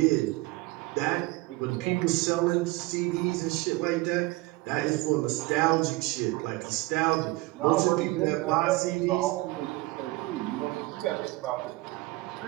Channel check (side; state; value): left; quieter; 20.8 dB